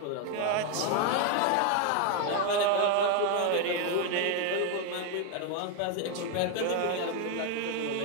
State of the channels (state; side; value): different; both; correlation 0.01